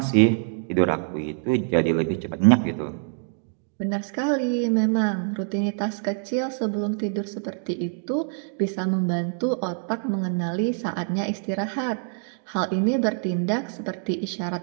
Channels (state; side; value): silent; left; 58 dB below the other